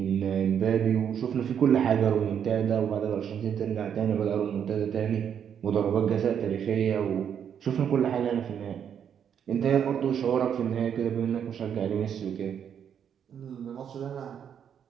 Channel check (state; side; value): quieter; left; 8.3 dB